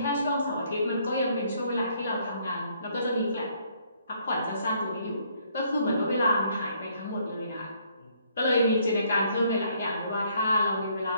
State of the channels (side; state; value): both; inverted; correlation -0.67